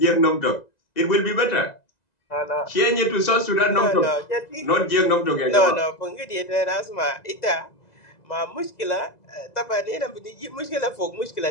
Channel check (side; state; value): right; late; 2.0 ms